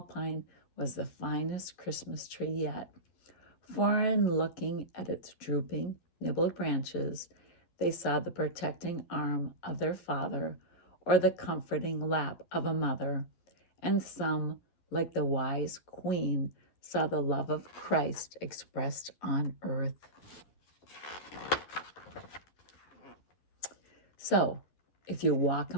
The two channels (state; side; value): late; right; 11 ms